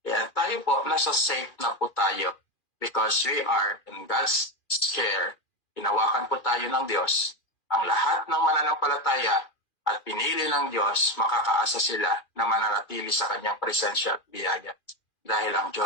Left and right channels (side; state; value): right; late; 2.4 ms